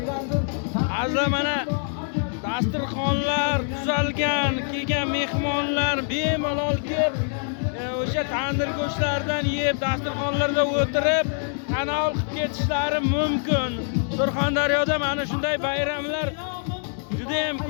Azizlar, mana dasturxonlar tuzalgan, kelgan mehmonlar bemalol kelib, o'sha tandir go'shtlaridan yeb, dasturxonlarda o'tirib, tanovul qilib ketishlari mumkin. Surxondaryoda mana shunday bayramlar juda ham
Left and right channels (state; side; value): silent; right; 62 dB below the other